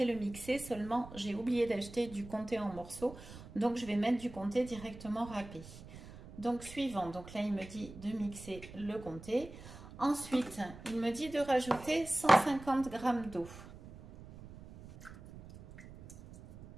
le mixer. Seulement, j'ai oublié d'acheter du comté en morceaux. Donc je vais mettre du comté directement râpé. Donc suivant, donc là il me dit de mixer le comté. Ensuite, il me dit de rajouter 150 g d'eau.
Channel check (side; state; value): right; noise; rumble, 16 dB below the sound